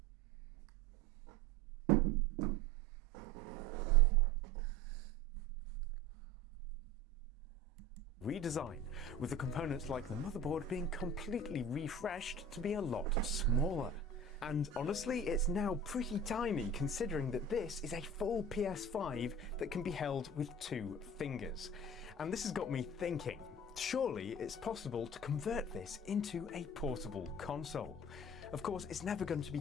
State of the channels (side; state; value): both; normal; correlation 0.37